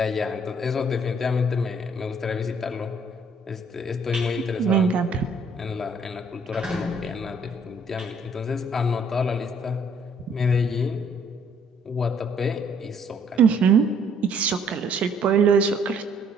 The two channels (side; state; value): both; normal; correlation 0.63